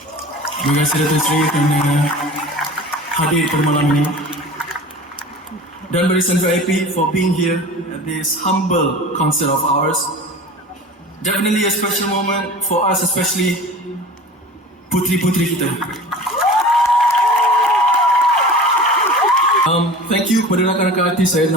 Terima kasih Datuk Seri kerana hadir pada malam ini. Dan Barisan VIP for being here at this humble concert of ours. Definitely a special moment for us, especially putri-putri kita. Thank you kepada rakan-rakan artis. Saya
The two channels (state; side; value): normal; both; correlation 0.38